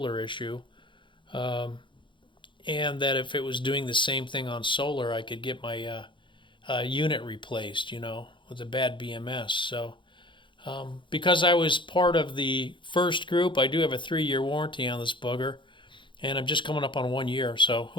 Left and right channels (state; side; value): late; right; 0.23 ms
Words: issue. And that if it was doing the same thing on solar, I could get my unit replaced, with a bad BMS. So because I was part of the first group, I do have a 3-year warranty on this booger, and I'm just coming up on 1 year. So